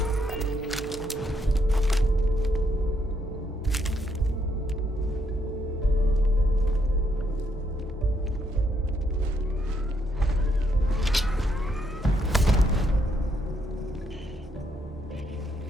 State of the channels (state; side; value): normal; both; correlation 0.75